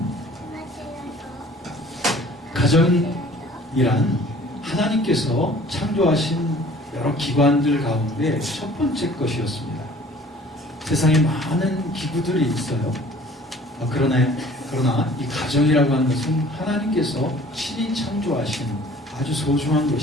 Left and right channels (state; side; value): normal; both; correlation 0.51